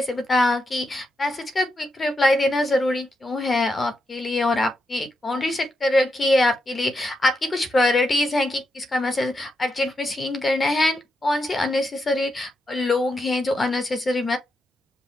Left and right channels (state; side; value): normal; both; correlation 0.84